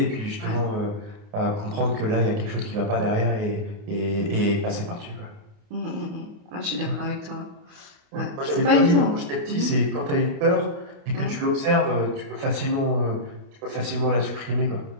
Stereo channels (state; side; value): late; left; 28 ms